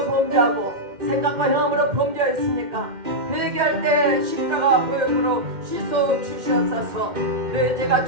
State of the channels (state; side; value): late; left; 2.1 ms